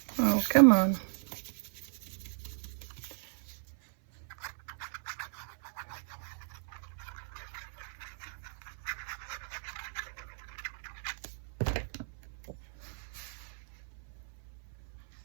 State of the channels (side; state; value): left; silent; 54 dB below the other